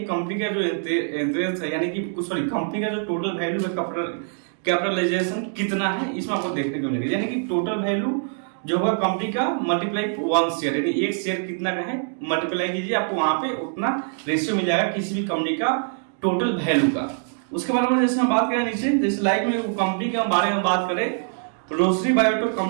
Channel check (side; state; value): left; silent; digital silence